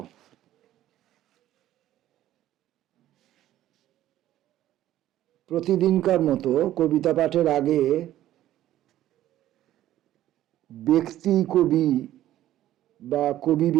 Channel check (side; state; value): left; quieter; 13.3 dB